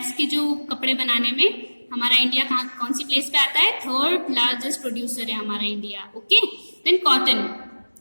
के जो कपड़े बनाने में हमारा इंडिया कौन सी प्लेस पे आता है, थर्ड लार्जेस्ट प्रोड्यूसर है हमारा India. Okay, then cotton,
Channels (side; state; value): both; inverted; correlation -1.00